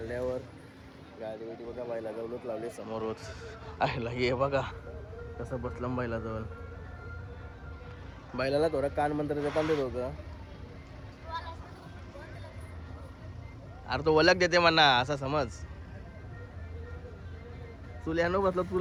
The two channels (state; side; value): identical; both; correlation 1.00